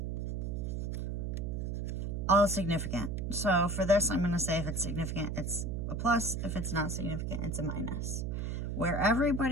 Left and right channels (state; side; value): noise; right; hum, 2 dB below the sound